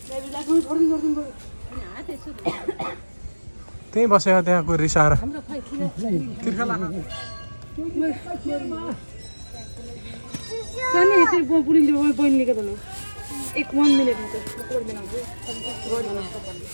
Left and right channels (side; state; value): both; inverted; correlation -1.00